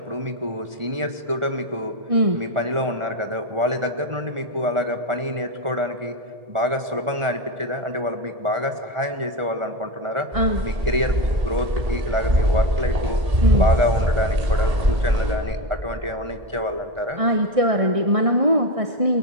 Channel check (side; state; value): left; late; 1.4 ms